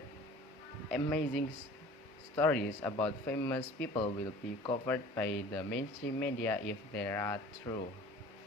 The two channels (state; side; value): normal; both; correlation 0.45